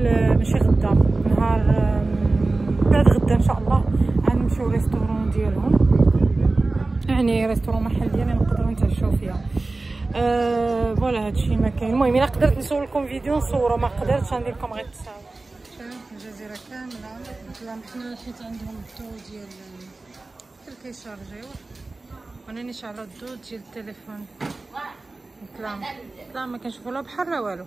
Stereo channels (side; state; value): left; quieter; 3.3 dB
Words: ماشي غدا، نهار بعد غدا ان شاء الله غنمشيو ريستورون ديالهم، يعني ريستورون محل ديالنا نقدروا نتعشاو فيها. فوالا هادشي ما كاين. المهم الا قدرت نصور لكم فيديو نصورو، ما قدرتش غندير لكم غير التصاور. الجزيره كامله ظلام، حنا حيت عندهم الضو ديال كيشارجيو، وانا شعلوا الضو ديال التليفون. ظلام ما كنشوفو لا بحر لا والو،